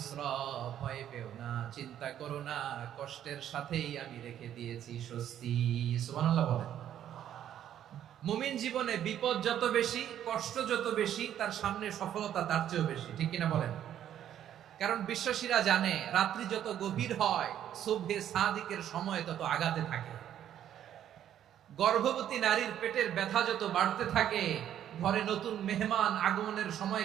ভয় পেও না, চিন্তা করো না, কষ্টের সাথেই আমি রেখে দিয়েছি স্বস্তি। সুবহানাল্লাহ বলেন। মুমিন জীবনে বিপদ যত বেশি, কষ্ট যত বেশি, তার সামনে সফলতা তার চেয়েও বেশি, ঠিক কিনা বলেন? কারণ বিশ্বাসীরা জানে রাত্রি যত গভীর হয় সুবহে সাদিকের সময় তত আগাতে থাকে। গর্ভবতী নারীর পেটের ব্যথা যত বাড়তে থাকে, ঘরে নতুন মেহমান আগমনের সময়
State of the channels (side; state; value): left; quieter; 10.7 dB